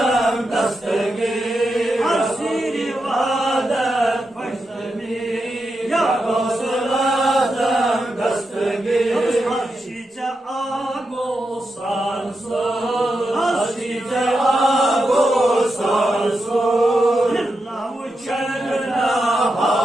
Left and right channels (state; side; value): normal; both; correlation 0.87